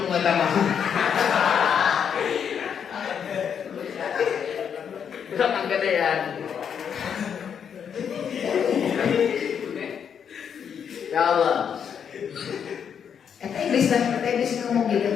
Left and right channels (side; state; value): right; quieter; 7.7 dB